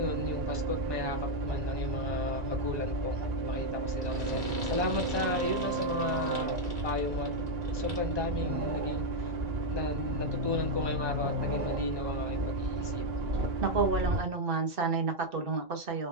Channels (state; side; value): late; left; 1.2 ms